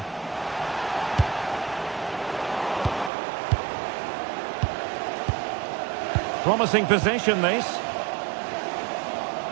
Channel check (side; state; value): left; drops out; at 3.1 s